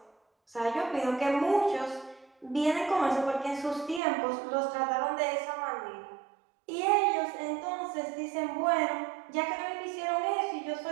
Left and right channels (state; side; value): drops out; left; at 4.0 s